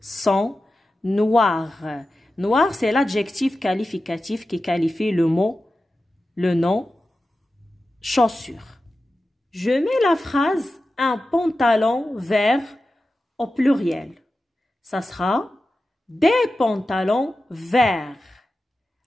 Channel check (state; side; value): normal; both; correlation 0.93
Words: noires. Noir, c'est l'adjectif qualificatif qui qualifie le nom chaussure. Je mets la phrase un pantalon vert au pluriel. Ça sera des pantalons verts.